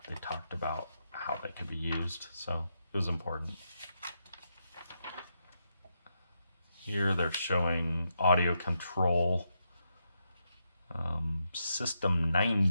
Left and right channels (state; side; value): inverted; both; correlation -0.83